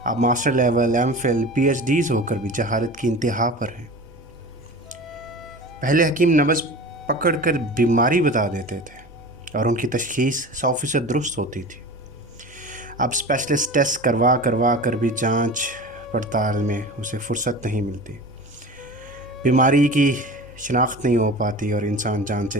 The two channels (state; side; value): normal; both; correlation 0.35